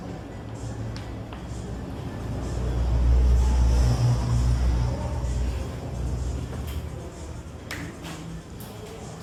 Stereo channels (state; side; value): identical; both; correlation 1.00